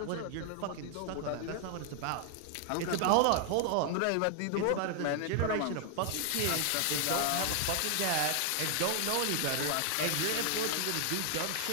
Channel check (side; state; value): both; different; correlation 0.00